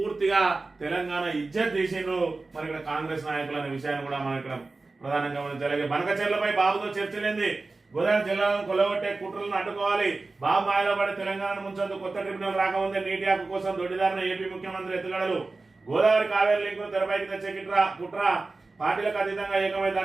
తెలంగాణ ఇజ్జత్ తీసిండ్రు మరి ఇక్కడ కాంగ్రెస్ నాయకులు అనే విషయాన్ని కూడా మనం ఇక్కడ ప్రధానంగా గమనించాలి. బనకచెర్లపై బాబుతో చర్చలేంది. గోదావరి జిల్లాను కొలగొట్టే కుట్రలను అడ్డుకోవాలి. బాబు మాయలో పడి తెలంగాణ ముంచొద్దు. కొత్త ట్రిబ్యునల్ రాకముందే నీటి హక్కు కోసం దొడ్డిదారిన ఏపీ ముఖ్యమంత్రి ఎత్తుగడలు. గోదావరి కావేరీ లింకును తెరపైకి తెచ్చే కుట్ర పార్టీలకు అతీతంగా ఏకమై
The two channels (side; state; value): left; quieter; 3.5 dB